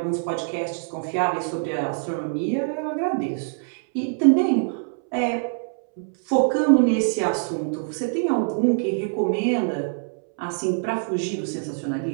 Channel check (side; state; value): left; silent; 62 dB below the other